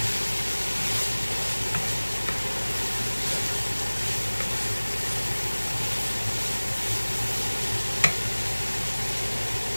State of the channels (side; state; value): both; inverted; correlation -1.00